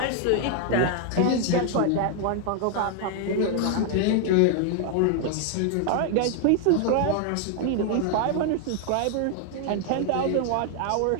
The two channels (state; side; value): different; both; correlation 0.00